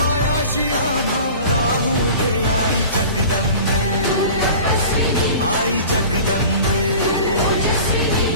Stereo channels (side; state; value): both; inverted; correlation -0.40